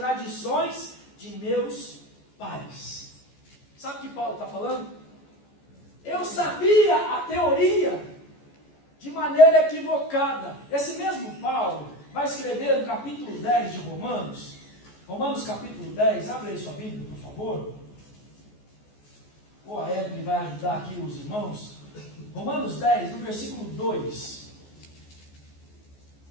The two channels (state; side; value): late; right; 14 ms